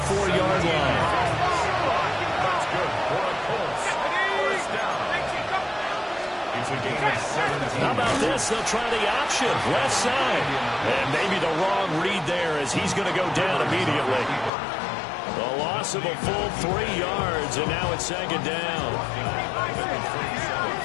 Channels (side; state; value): right; drops out; at 14.5 s